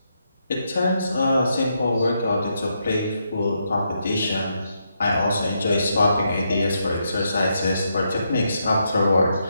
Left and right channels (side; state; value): both; inverted; correlation -0.80